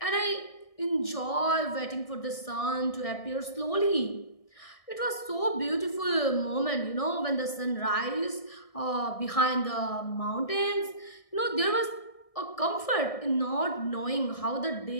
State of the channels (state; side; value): late; right; 1.6 ms